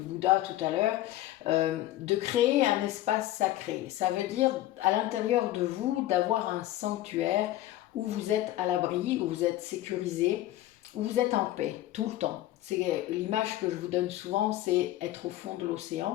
tout à l'heure, de créer un espace sacré. Ça veut dire à l'intérieur de vous d'avoir un sanctuaire où vous êtes à l'abri, où vous êtes sécurisé, où vous êtes en paix tout le temps. C'est l'image que je vous donne souvent, c'est être au fond de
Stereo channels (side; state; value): right; quieter; 14.7 dB